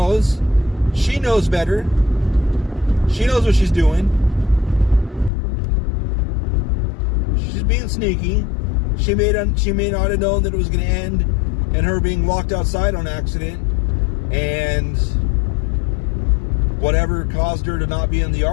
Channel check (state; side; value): drops out; right; at 5.3 s